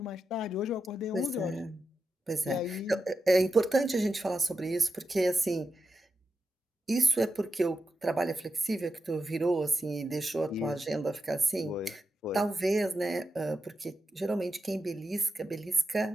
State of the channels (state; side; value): normal; both; correlation 0.88